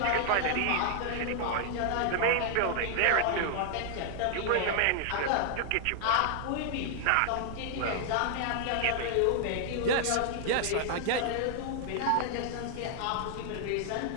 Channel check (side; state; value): both; different; correlation 0.00